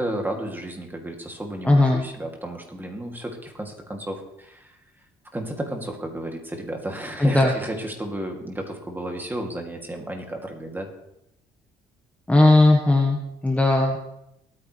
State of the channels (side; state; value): both; normal; correlation 0.90